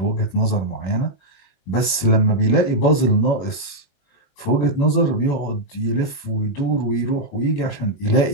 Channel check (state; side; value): late; right; 21 ms